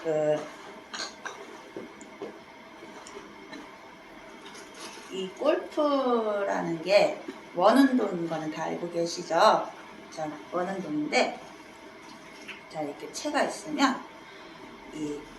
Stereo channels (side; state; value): both; identical; correlation 1.00